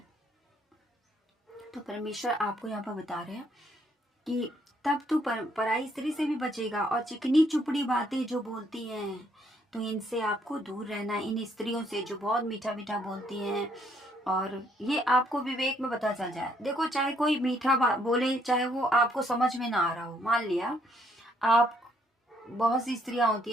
तो परमेश्वर आपको यहाँ पर बता रहे हैं कि तब तू पराई स्त्री से भी बचेगा। और चिकनी चुपड़ी बातें जो बोलती हैं, तो इनसे आपको दूर रहना है, इन स्त्रियों से जो बहुत मीठा मीठा बोलती हैं। और ये आपको विवेक में पता चल जाए। देखो, चाहे कोई मीठा बोले, चाहे वो आपको समझ में ना आ रहा हो। मान लिया आप, बहुत सी स्त्रियां होती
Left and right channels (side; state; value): both; normal; correlation 0.69